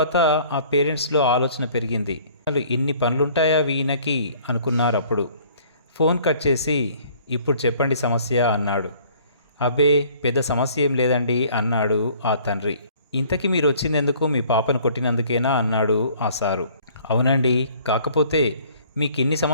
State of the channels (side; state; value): both; inverted; correlation -0.55